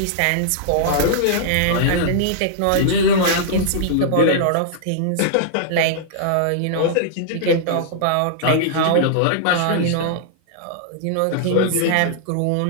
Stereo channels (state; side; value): different; both; correlation -0.01